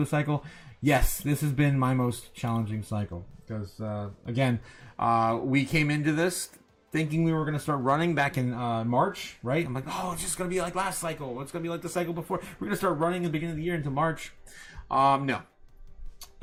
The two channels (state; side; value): identical; both; correlation 1.00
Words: cycle? Yes, this has been my most challenging cycle. Because, again, we came into this thinking we were going to start running back in March, right? I'm like, oh, it's just going to be like last cycle. It's going to be like the cycle before. We're going to start running at the beginning of the year into March. No.